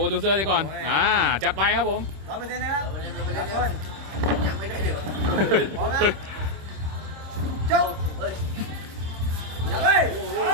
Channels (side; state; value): left; late; 26 ms